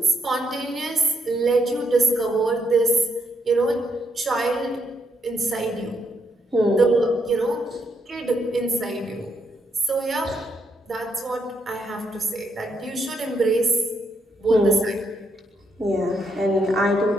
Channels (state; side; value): normal; both; correlation 0.78